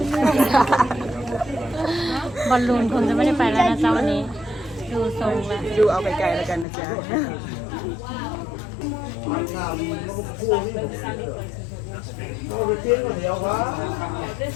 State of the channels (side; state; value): right; drops out; at 6.7 s